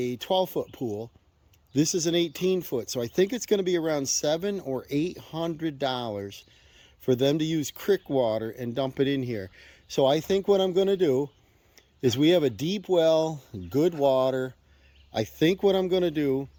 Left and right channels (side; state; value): both; identical; correlation 1.00